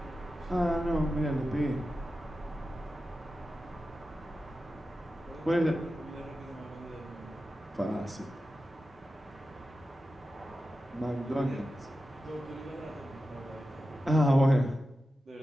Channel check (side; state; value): both; normal; correlation 0.92